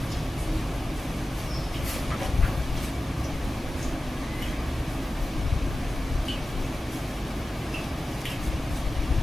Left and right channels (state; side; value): normal; both; correlation 0.95